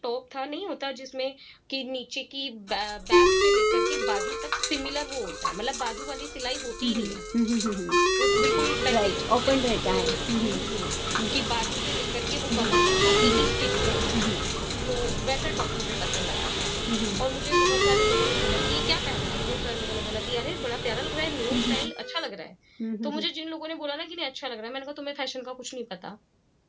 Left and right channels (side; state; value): both; identical; correlation 1.00